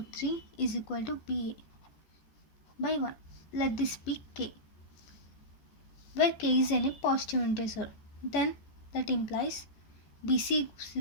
3 is equal to BA by 1. Let this be K, where K is any positive integer. Then that implies BC is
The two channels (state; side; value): late; right; 14 ms